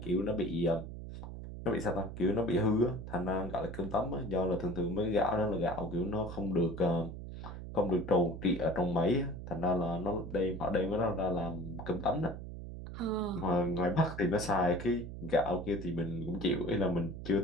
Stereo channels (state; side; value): noise; right; hum, 9 dB below the sound